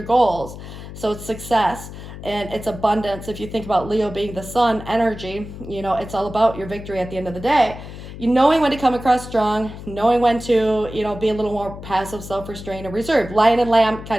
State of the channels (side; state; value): left; noise; hum, 12 dB below the sound